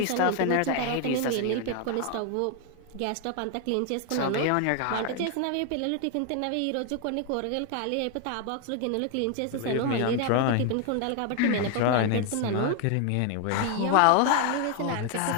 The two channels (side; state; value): both; different; correlation 0.00